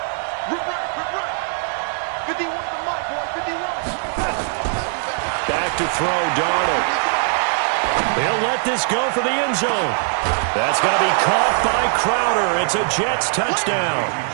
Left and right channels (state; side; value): silent; left; 58 dB below the other